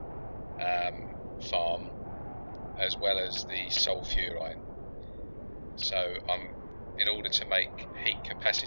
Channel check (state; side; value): inverted; both; correlation -1.00